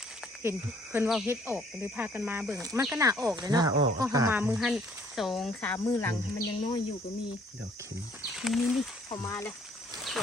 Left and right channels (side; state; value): both; normal; correlation 0.61